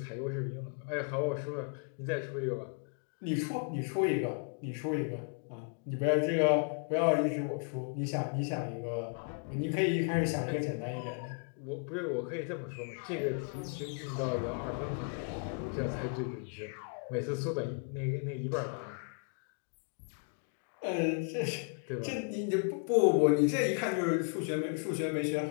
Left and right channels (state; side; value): quieter; right; 39.4 dB